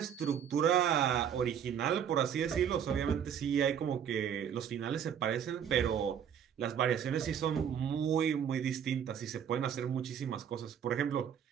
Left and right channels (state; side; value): quieter; left; 8.5 dB